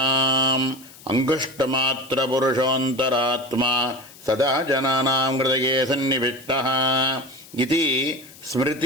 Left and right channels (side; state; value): left; noise; hiss, 21 dB below the sound